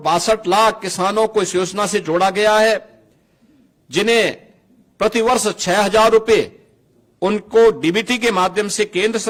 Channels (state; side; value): identical; both; correlation 1.00